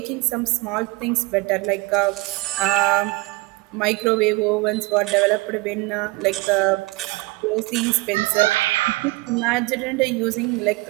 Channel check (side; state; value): left; quieter; 23.3 dB